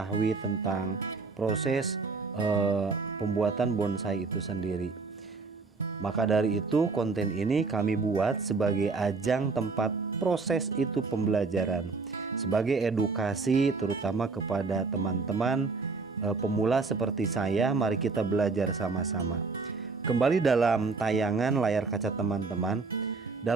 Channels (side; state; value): left; quieter; 4.3 dB